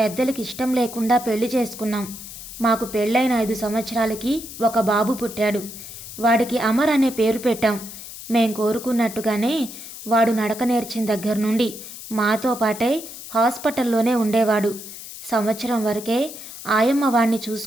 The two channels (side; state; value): left; noise; hiss, 13 dB below the sound